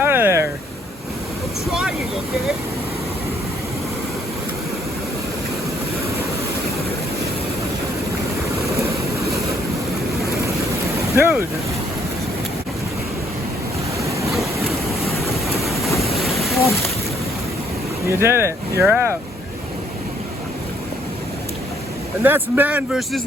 of there. I'm trying, okay? Dude. You did it. You're out. And that's man versus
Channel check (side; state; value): both; normal; correlation 0.66